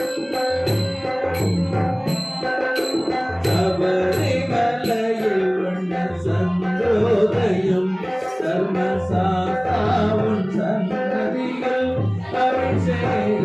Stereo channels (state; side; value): identical; both; correlation 1.00